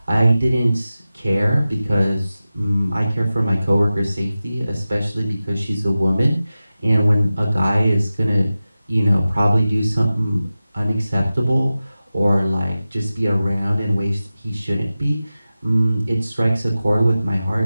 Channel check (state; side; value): inverted; both; correlation -0.95